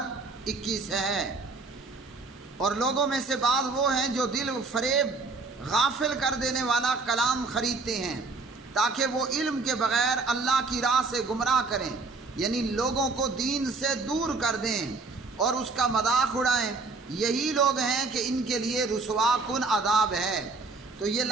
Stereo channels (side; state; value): left; quieter; 3.9 dB